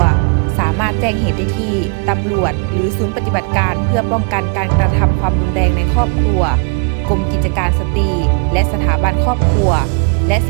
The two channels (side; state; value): left; quieter; 38.3 dB